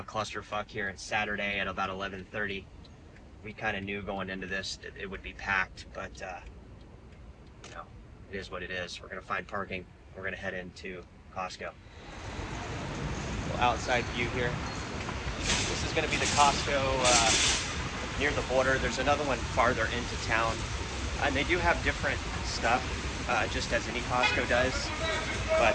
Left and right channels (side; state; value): both; identical; correlation 1.00